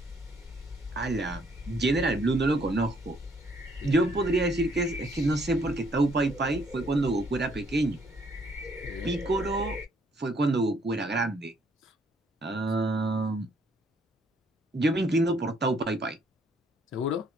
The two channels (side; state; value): both; normal; correlation 0.67